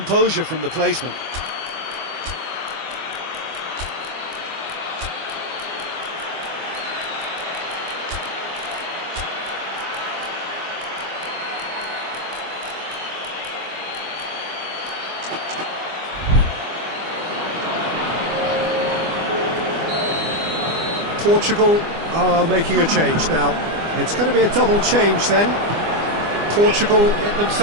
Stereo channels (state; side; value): late; left; 25 ms